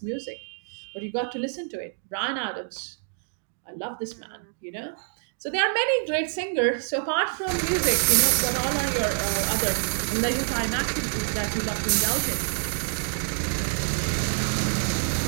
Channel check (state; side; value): silent; left; digital silence